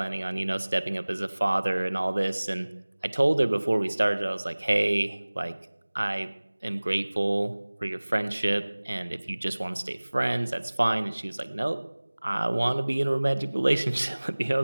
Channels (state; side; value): inverted; both; correlation -1.00